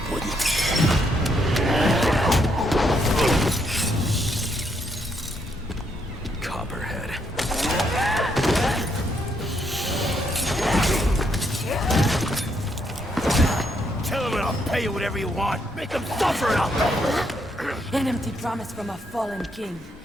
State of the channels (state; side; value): normal; both; correlation 0.75